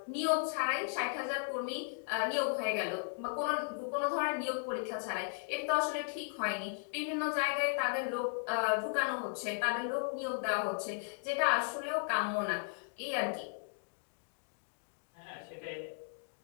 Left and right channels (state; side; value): silent; right; digital silence